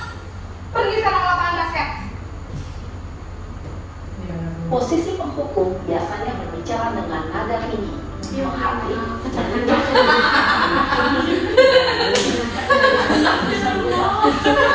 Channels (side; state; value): both; identical; correlation 1.00